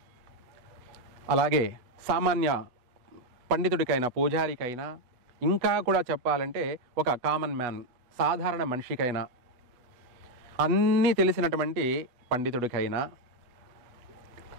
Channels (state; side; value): late; left; 8.1 ms